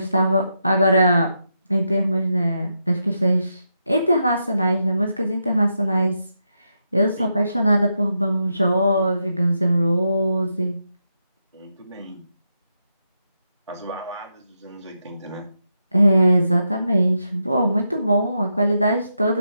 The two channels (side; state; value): both; inverted; correlation -0.84